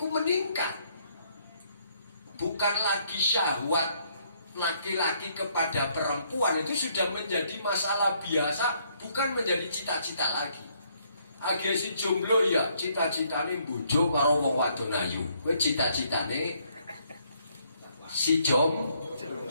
meningkat. Bukan lagi syahwat laki-laki kepada perempuan, itu sudah menjadi masalah biasa, bukan menjadi cita-cita lagi. Age si jomblo ya cita-citane bojo karo wong wadon ayu. Kowe cita-citane si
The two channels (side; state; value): both; inverted; correlation -0.69